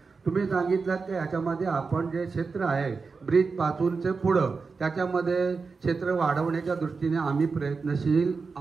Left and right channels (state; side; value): quieter; left; 4.7 dB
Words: तुम्ही सांगितलं की याच्यामध्ये आपण जे क्षेत्र आहे ब्रिजपासूनचे पुढं त्याच्यामध्ये क्षेत्र वाढवण्याच्या दृष्टीने आम्ही प्रयत्नशील